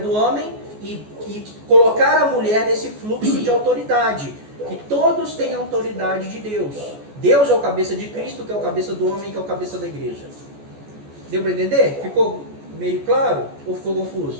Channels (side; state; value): left; late; 14 ms